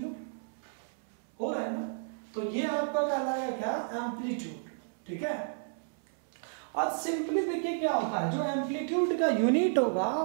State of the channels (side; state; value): left; silent; 57 dB below the other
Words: हो रहा है ना। तो ये आपका कहलाएगा क्या, एम्पलीट्यूड, ठीक है। और सिंपली देखिए क्या होता है, जो एम्पलीट्यूड का यूनिट होगा